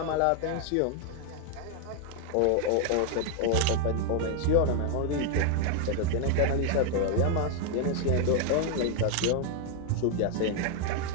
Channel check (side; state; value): both; different; correlation 0.00